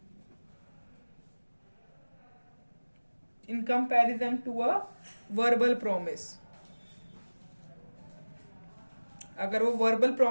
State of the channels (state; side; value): inverted; both; correlation -1.00